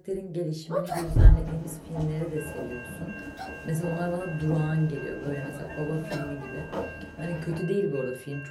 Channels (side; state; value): both; identical; correlation 1.00